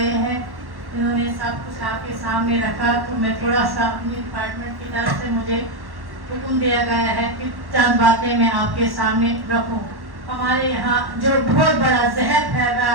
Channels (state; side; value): late; left; 1.1 ms